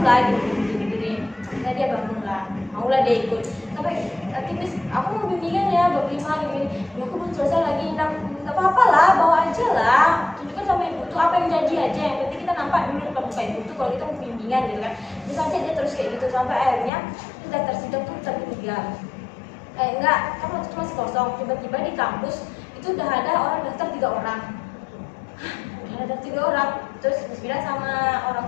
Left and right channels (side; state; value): right; drops out; at 16.9 s